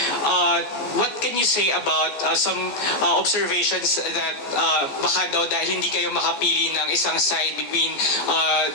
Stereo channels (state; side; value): late; right; 14 ms